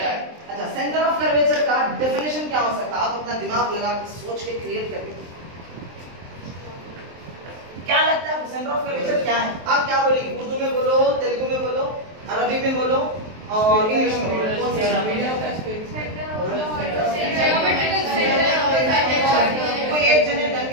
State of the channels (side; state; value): left; late; 23 ms